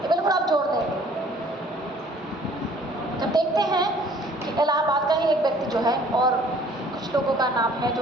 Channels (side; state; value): both; normal; correlation 0.55